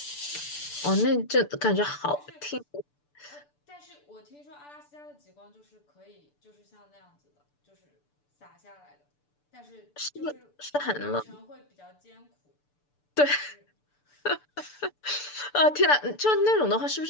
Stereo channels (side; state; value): right; late; 6.8 ms